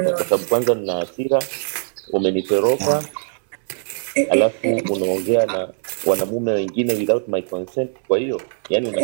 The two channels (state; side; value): silent; left; 65 dB below the other